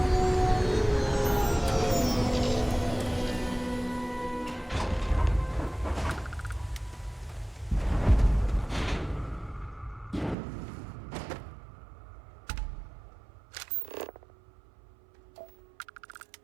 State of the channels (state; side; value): drops out; left; at 10.4 s